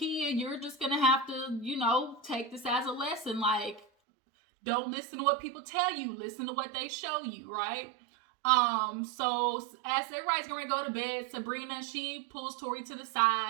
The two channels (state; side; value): drops out; left; at 3.9 s